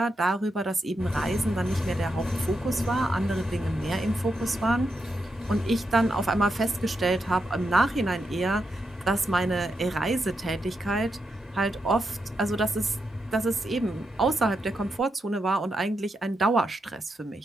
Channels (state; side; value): normal; both; correlation 0.84